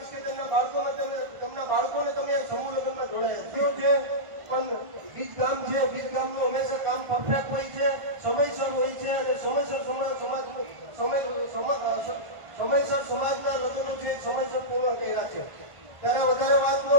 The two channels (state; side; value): late; left; 1.5 ms